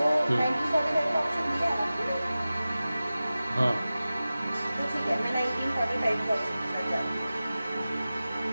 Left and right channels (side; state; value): both; inverted; correlation -0.96